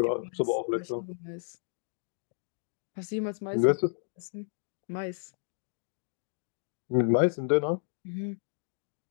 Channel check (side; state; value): right; silent; digital silence